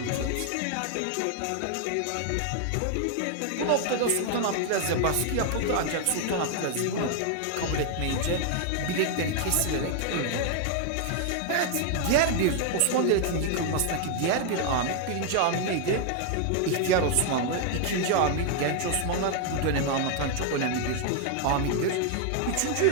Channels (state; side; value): different; both; correlation 0.00